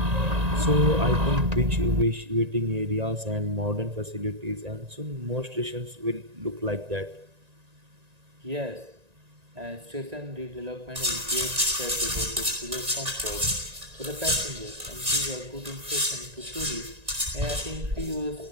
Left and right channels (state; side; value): late; left; 1.9 ms